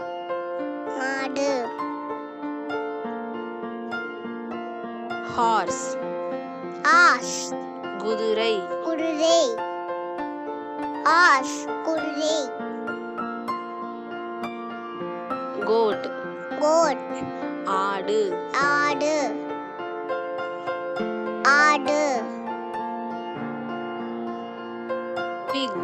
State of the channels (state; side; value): identical; both; correlation 1.00